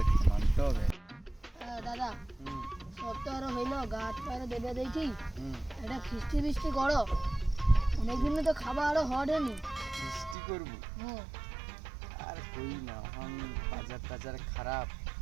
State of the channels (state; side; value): drops out; left; at 10.4 s